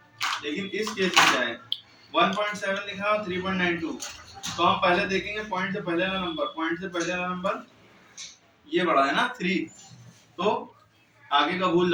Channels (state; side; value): identical; both; correlation 1.00